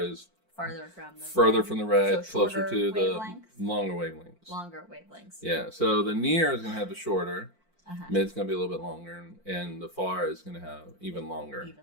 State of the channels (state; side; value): late; right; 4.5 ms